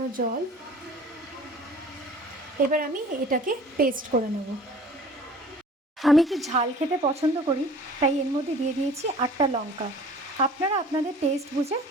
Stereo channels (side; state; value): both; normal; correlation 0.47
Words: জল। এবার আমি এটাকে পেস্ট করে নেব। আমি একটু ঝাল খেতে পছন্দ করি, তাই এর মধ্যে দিয়ে দিয়েছি 8টা লঙ্কা। আপনারা আপনাদের টেস্ট বুঝে